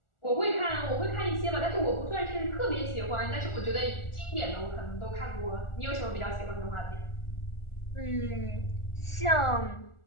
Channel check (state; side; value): late; right; 1.4 ms